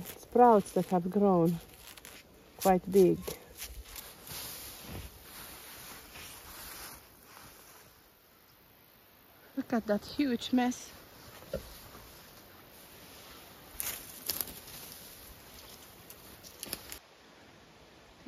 sprouts that have grown quite big. Look at that huge mess.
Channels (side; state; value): both; identical; correlation 1.00